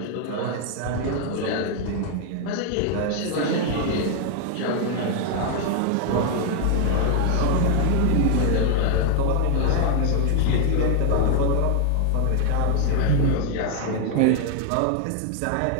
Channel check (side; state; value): both; different; correlation 0.00